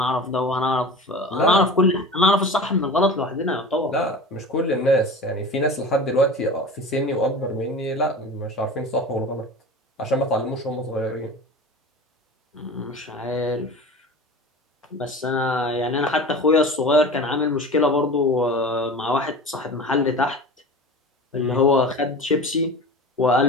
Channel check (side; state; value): both; normal; correlation 0.34